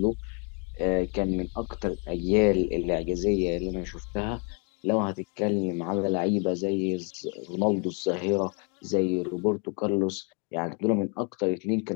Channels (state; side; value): quieter; right; 36.6 dB